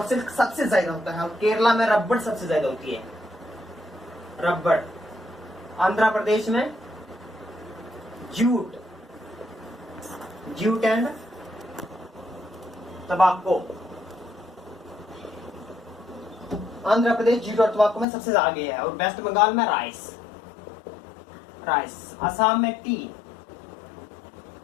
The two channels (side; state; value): right; drops out; at 18.1 s